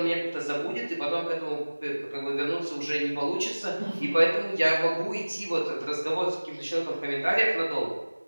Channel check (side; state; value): both; inverted; correlation -1.00